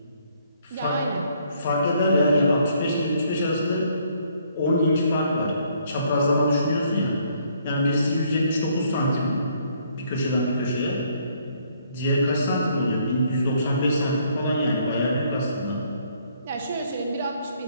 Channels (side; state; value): both; inverted; correlation -0.67